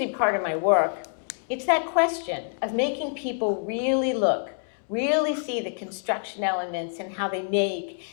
be part of my work. It's that question of making people really look, really see the construction elements and how they make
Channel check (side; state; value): right; silent; digital silence